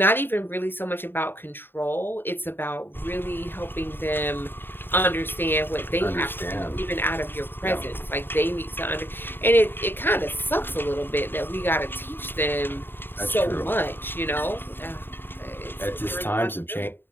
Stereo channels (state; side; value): late; right; 0.099 ms